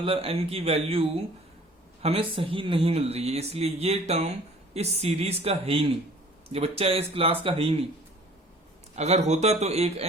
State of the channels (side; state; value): both; normal; correlation 0.50